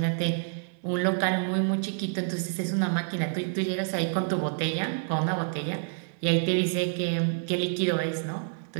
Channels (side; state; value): left; silent; 58 dB below the other